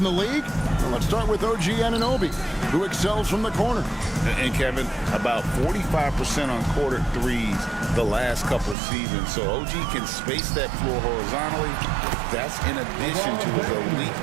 the league. Well, let's start with OG Anunoby, who excels from the corner. And Kevin, about 45% on quarter threes the last couple of seasons. So OG can space that floor horizontally. That's in addition to his elite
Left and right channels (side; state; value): left; drops out; at 8.8 s